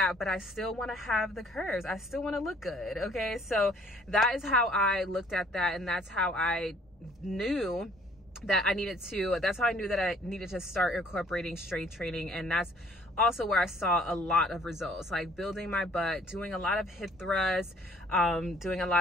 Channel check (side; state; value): both; normal; correlation 0.59